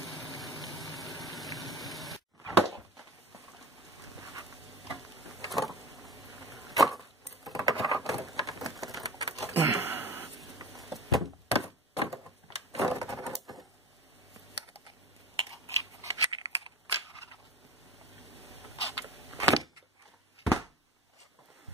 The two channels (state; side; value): normal; both; correlation 0.36